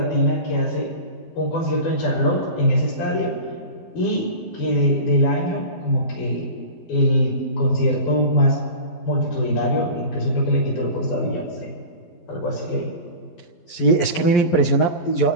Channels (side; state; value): right; late; 12 ms